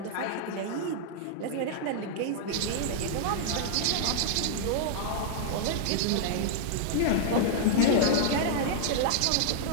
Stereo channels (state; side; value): different; both; correlation -0.01